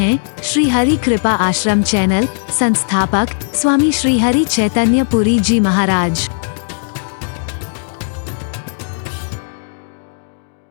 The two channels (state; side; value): silent; right; digital silence